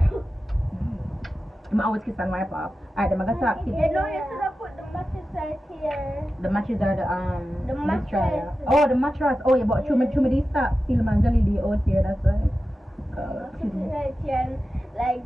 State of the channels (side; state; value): both; normal; correlation 0.93